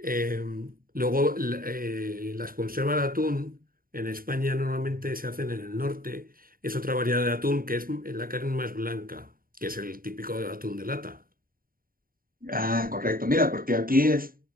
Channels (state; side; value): late; left; 0.42 ms